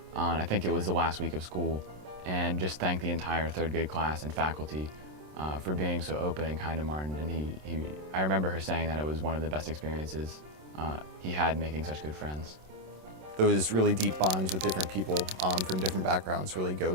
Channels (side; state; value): left; late; 27 ms